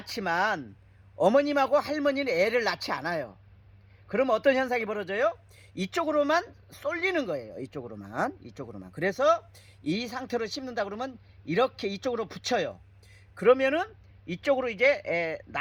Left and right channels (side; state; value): both; identical; correlation 1.00